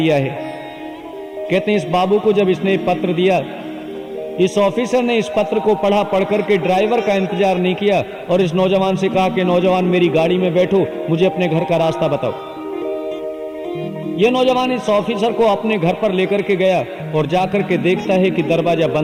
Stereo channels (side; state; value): both; identical; correlation 1.00